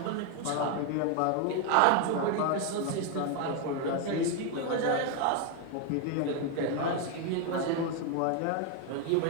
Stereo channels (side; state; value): both; different; correlation 0.01